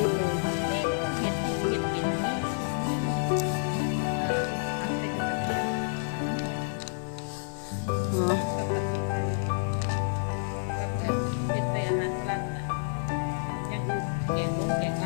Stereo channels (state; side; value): silent; right; digital silence